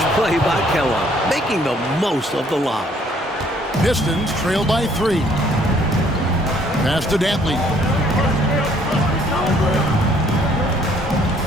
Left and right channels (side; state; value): both; normal; correlation 0.62